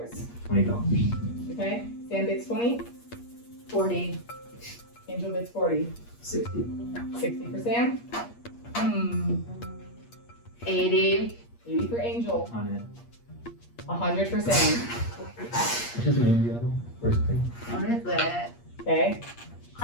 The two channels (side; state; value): right; late; 8.5 ms